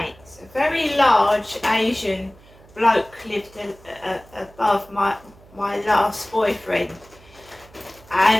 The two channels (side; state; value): right; noise; hum, 25 dB below the sound